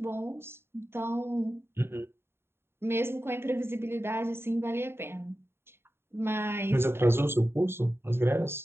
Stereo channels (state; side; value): late; left; 0.11 ms